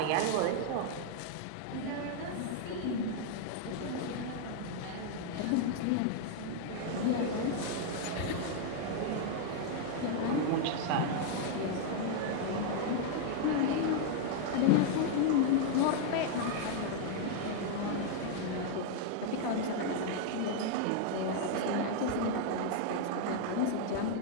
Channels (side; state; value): both; different; correlation 0.00